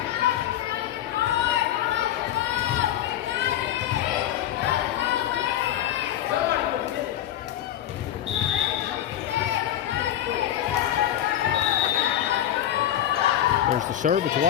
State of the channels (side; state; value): right; quieter; 11.9 dB